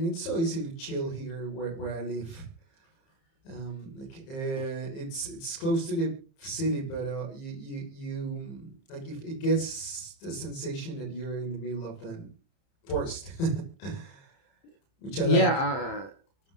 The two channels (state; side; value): late; right; 30 ms